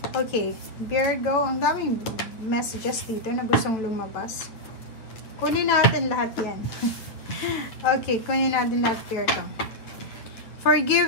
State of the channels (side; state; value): right; late; 8.8 ms